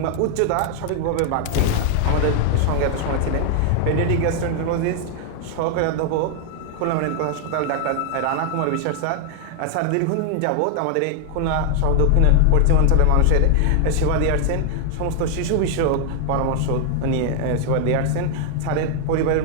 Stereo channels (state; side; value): different; both; correlation 0.00